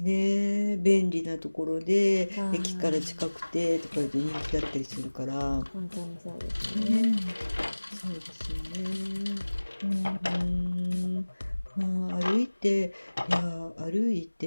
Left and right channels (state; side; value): inverted; both; correlation -1.00